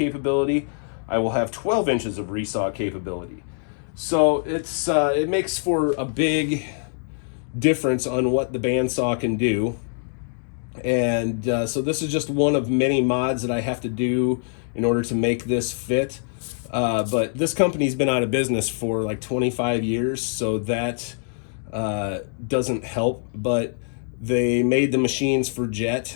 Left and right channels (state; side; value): silent; right; digital silence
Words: I will have 12 inches of resaw capability. So it's it makes for a big difference on what the bandsaw can do. And so this is just one of many mods that I have to do in order to make this fit. But this company's been out of business for like 25 years, so that doesn't help. But they made the machines for